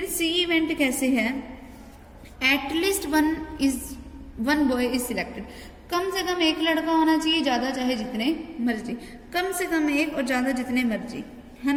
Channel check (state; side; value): identical; both; correlation 1.00